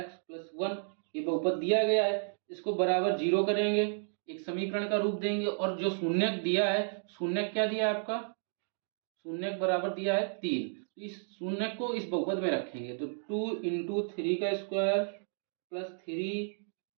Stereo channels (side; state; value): left; silent; digital silence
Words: प्लस 1। ये बहुपद दिया गया है, इसको बराबर 0 करेंगे, एक समीकरण का रूप देंगे। और जो शून्यक दिया है, शून्यक क्या दिया है आपका, शून्यक बराबर दिया है 3। तो इस शून्यक को इस बहुपद में रखेंगे। तो 2 इंटू 3 का स्क्वायर प्लस 3